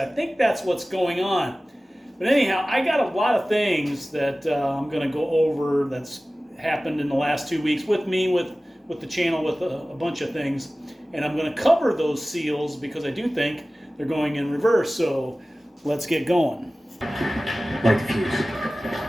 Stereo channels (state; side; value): normal; both; correlation 0.97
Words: think that's what's going on. But anyhow, I got a lot of things that I'm going to go over that's happened in the last 2 weeks with me, with the channel, with a bunch of things. And I'm going to cover those seals because I do think they're going in reverse. So let's get going. Light the fuse.